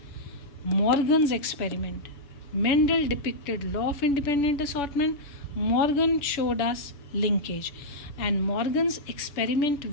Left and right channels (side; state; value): right; late; 6.9 ms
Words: Morgan's experiment. Mendel depicted law of independent assortment, Morgan showed us linkage, and Morgan's experiment